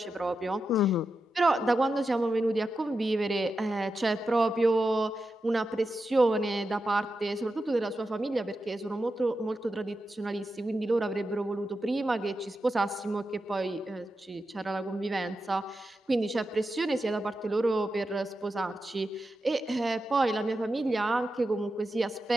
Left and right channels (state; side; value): normal; both; correlation 0.89